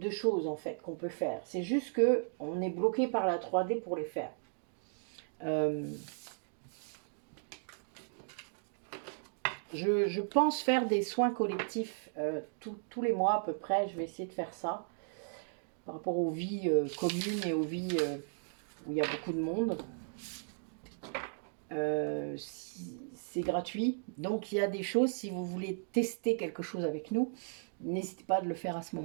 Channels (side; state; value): left; silent; digital silence